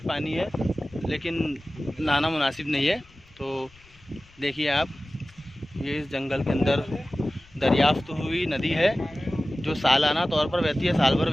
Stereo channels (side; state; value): left; noise; rumble, 27 dB below the sound